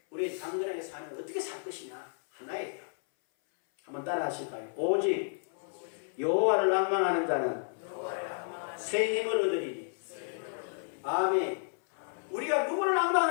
우리 당근하게 사는 건 어떻게 살 것이냐? 하나예요. 한번 따라 하실까요? 오직 여호와를 낭망하는 자는 새 힘을 얻으리니. 아멘. 우리가 누구를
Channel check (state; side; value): silent; right; 57 dB below the other